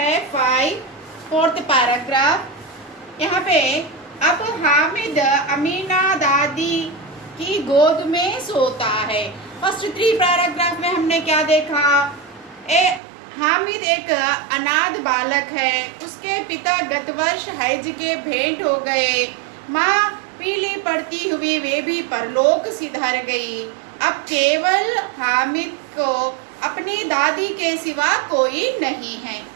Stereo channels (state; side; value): drops out; left; at 13.0 s